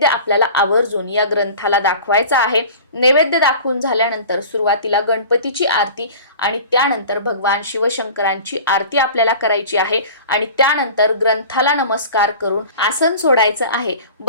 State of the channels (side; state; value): both; inverted; correlation -0.40